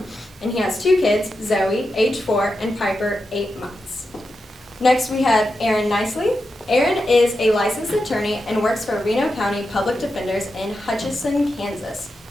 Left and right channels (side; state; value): both; normal; correlation 0.88